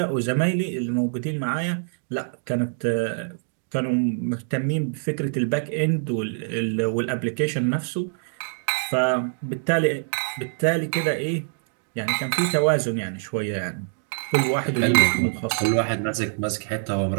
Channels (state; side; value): silent; left; digital silence